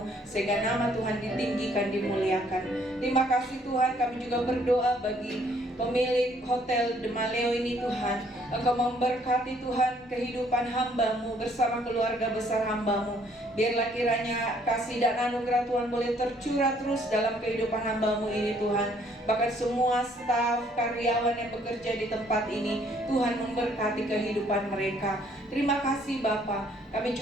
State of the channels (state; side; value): normal; both; correlation 0.64